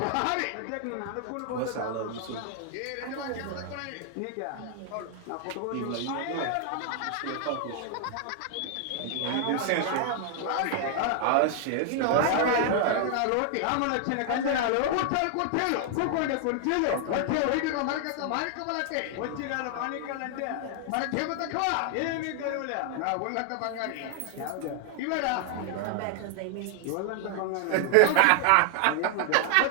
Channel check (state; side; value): different; both; correlation 0.00